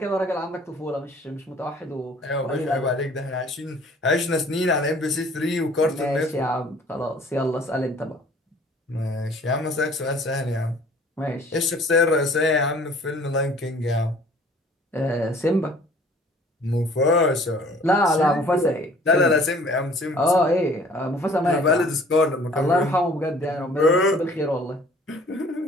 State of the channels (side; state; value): both; normal; correlation 0.53